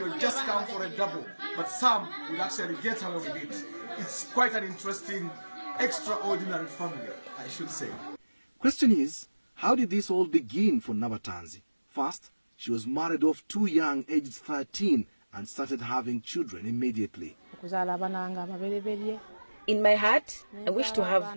just come for a double. But some would actually get away with it. It's quite an interesting, extraordinary family, I should say. Question is, how did this all begin for Nabatanzi? First, she was married off too young, aged 13, and started having children immediately. In my heart, I wish to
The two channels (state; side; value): inverted; both; correlation -1.00